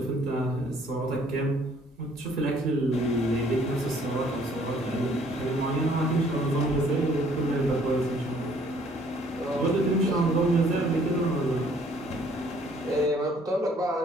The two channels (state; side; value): normal; both; correlation 0.60